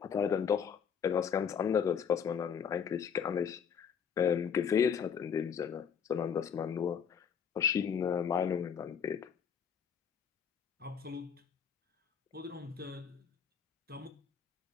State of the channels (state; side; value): quieter; right; 7.2 dB